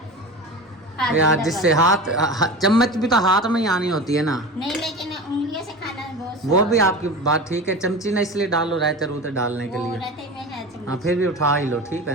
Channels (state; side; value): normal; both; correlation 0.30